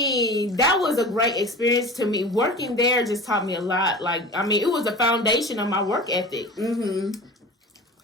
that was a great experience to me. Working there just taught me a lot. Like, I mean, it was the foundation of my work ethic.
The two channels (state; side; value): normal; both; correlation 0.36